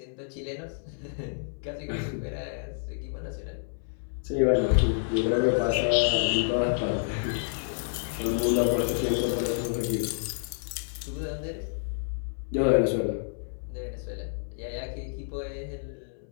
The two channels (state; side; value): silent; right; 59 dB below the other